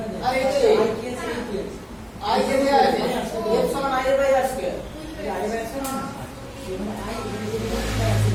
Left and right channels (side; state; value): both; identical; correlation 1.00